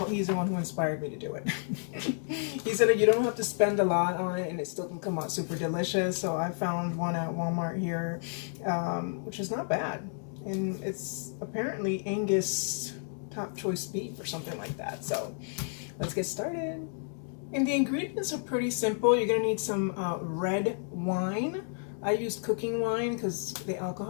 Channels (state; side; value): silent; right; 57 dB below the other